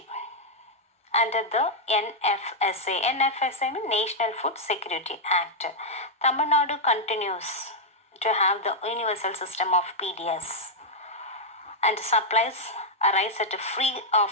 Under the NFSA means National Food Security Act. Tamil Nadu continues to have the universal system of PDS and supplies rice at free of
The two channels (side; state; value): both; normal; correlation -0.03